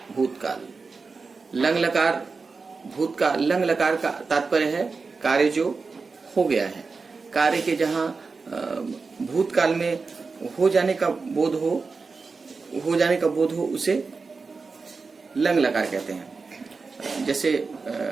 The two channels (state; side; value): quieter; left; 4.4 dB